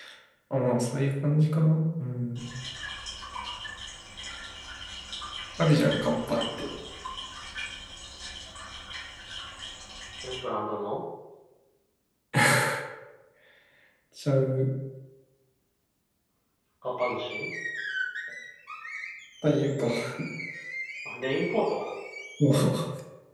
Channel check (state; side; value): identical; both; correlation 1.00